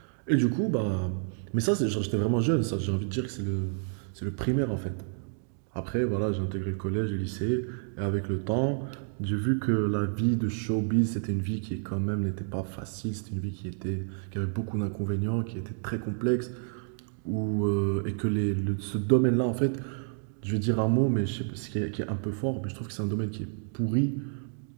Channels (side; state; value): left; silent; 58 dB below the other